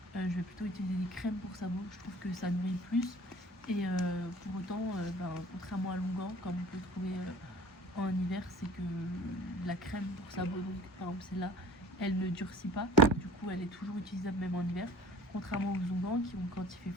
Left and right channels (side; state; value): both; normal; correlation 0.46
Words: Je vais plutôt utiliser des crèmes pour sabots, je trouve que ça nourrit plus et pour autant contrairement à l'onguent comme on peut trouver en hiver, c'est que la crème pour sabots, donc par exemple celle-là, elle ne durcit pas, du coup elle est toujours utilisable même en hiver, contrairement aux onguents qui ont, quand il fait